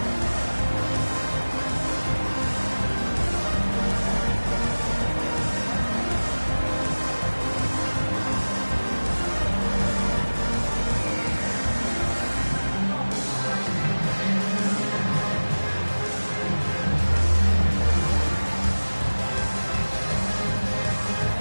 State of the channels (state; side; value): inverted; both; correlation -1.00